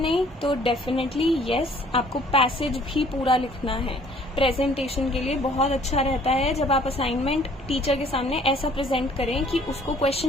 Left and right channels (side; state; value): both; normal; correlation 0.57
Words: तो डेफिनेटली यस, आपको पैसेज भी पूरा लिखना है। प्रेजेंटेशन के लिए बहुत अच्छा रहता है जब आप असाइनमेंट टीचर के सामने ऐसा प्रेजेंट करें कि उसको